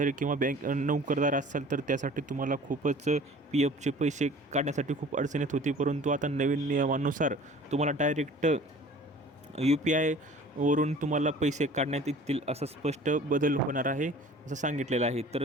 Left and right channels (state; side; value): normal; both; correlation 0.46